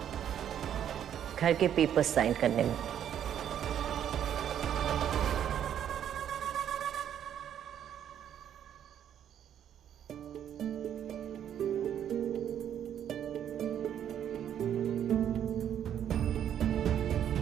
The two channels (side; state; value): left; quieter; 9.8 dB